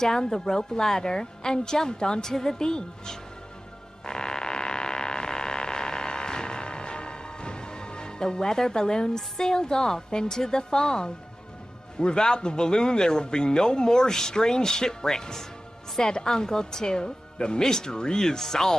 the rope ladder and jumped onto the beach. The weather balloon sailed off into the fog, Without the balloon, there will be no more strange shipwrecks. said Uncle Tooth. The mystery is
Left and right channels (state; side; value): normal; both; correlation 0.96